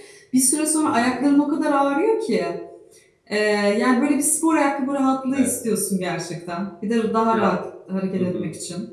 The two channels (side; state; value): both; identical; correlation 1.00